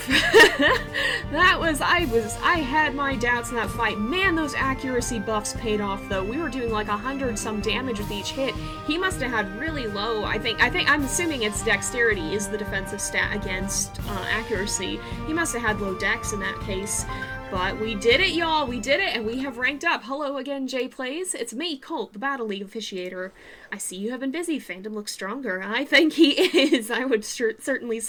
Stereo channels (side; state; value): both; identical; correlation 1.00